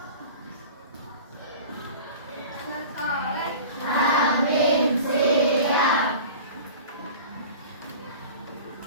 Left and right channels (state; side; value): inverted; both; correlation -0.39